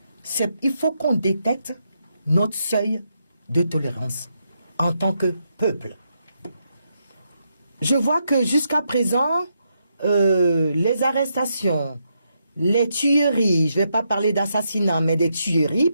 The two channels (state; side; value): inverted; both; correlation -0.81